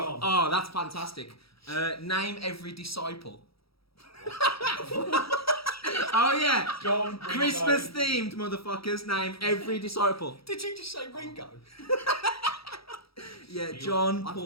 Oh, that's fantastic. Name every disciple. Oh yeah, John. Christmas themed motherfuckers. Name every disciple. Did you just say Ringo? Yeah, John,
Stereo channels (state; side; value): late; right; 0.76 ms